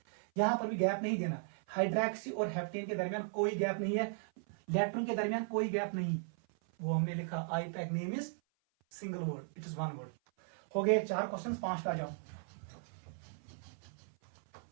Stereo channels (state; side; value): silent; left; 53 dB below the other